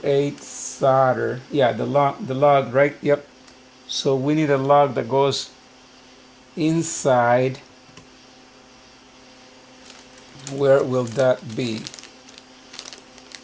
8 solder. Yeah, the lug, right? Yep. So we need a lug that goes inside. Where will that be?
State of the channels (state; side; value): identical; both; correlation 1.00